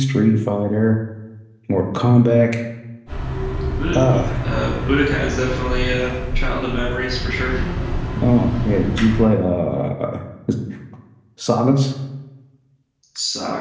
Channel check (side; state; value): both; identical; correlation 1.00